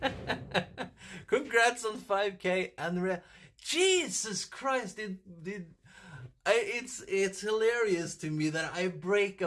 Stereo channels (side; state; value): both; identical; correlation 1.00